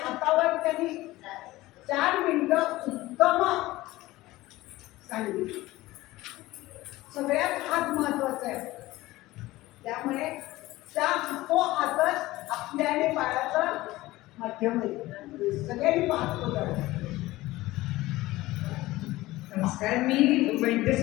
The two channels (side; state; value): right; quieter; 18.2 dB